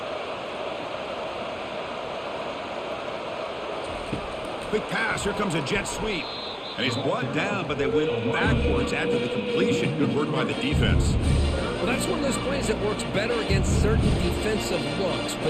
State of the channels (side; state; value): both; identical; correlation 1.00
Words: Quick pass. Here comes a jet sweep. And he's brought down, but they went backwards after the completion. Good work by the defense. Well, that's one of those plays that works better against certain defensive looks,